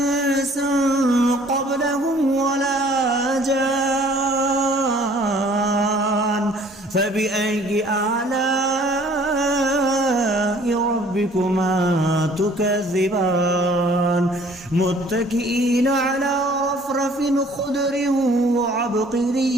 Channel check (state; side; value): normal; both; correlation 0.55